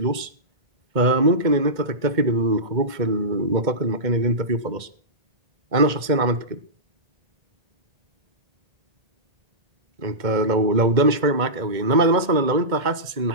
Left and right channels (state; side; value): late; left; 2.1 ms